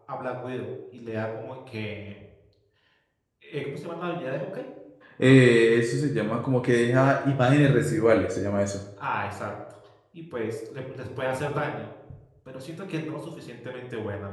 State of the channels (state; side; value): identical; both; correlation 1.00